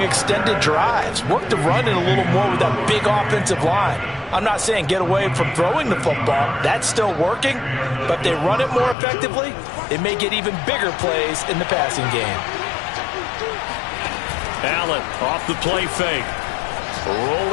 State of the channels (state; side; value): drops out; right; at 9.0 s